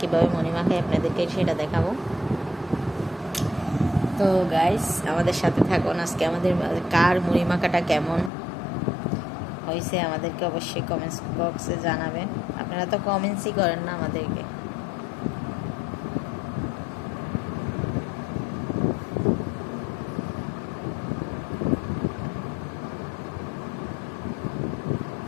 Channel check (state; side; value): drops out; right; at 8.3 s